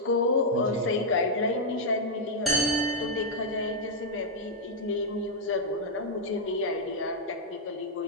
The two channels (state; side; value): normal; both; correlation -0.05